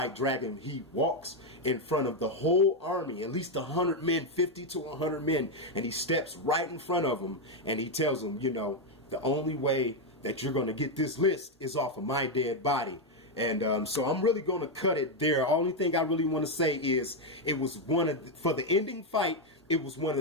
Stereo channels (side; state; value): both; normal; correlation 0.04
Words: Dragon, he walks in front of the whole army, at least 100 men, 50 to 100 men, and he steps right in front of them, and he tells them, you know, the only way that you're going to get this list is off of my dead body. And so I'm really going to cut it there. Only thing I really want to say is, it was for the ending fight, it was one